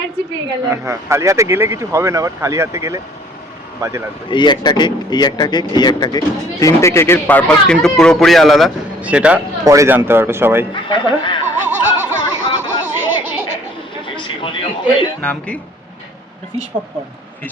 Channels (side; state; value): both; normal; correlation 0.56